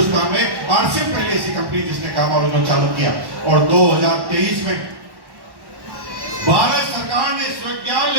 में आरसीएम पहली ऐसी कंपनी जिसने गामा ओरिजिनल चालू किया। और 2023 में भारत सरकार ने स्वीकृति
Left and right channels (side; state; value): left; late; 1.1 ms